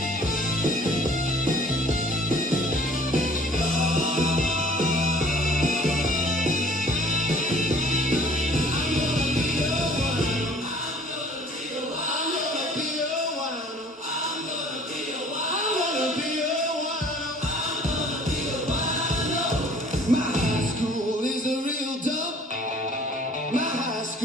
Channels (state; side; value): normal; both; correlation 0.53